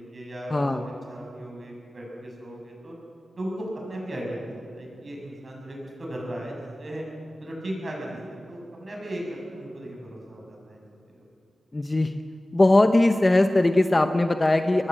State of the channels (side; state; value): both; normal; correlation 0.98